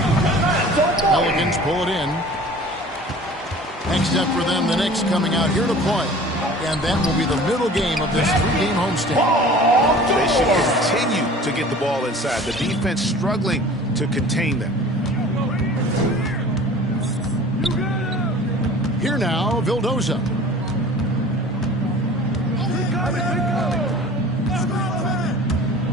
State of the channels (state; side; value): normal; both; correlation 0.44